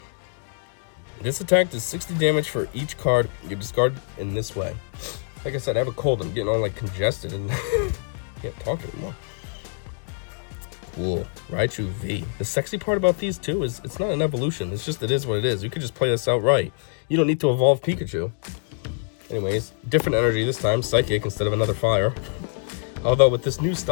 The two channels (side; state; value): right; silent; digital silence